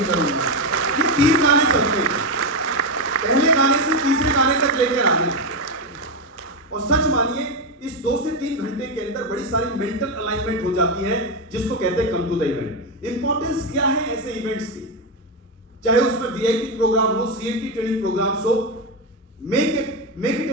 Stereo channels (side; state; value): both; normal; correlation 0.09